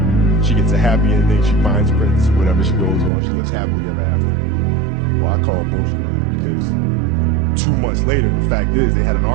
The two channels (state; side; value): drops out; left; at 3.1 s